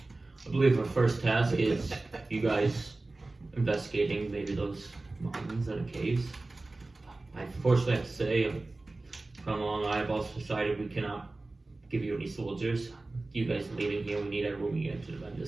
believe our first task is you guys investigating maybe those mountains and caves. I unfortunately have to say, Cromwell and I have also decided we cannot give you any soldiers. You guys leaving here, we need everyone we get to defend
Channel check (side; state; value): left; quieter; 3.1 dB